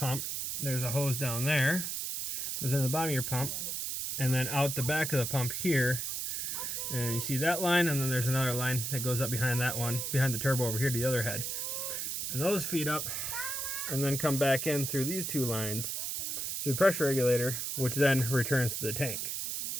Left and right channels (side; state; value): right; noise; hiss, 2 dB below the sound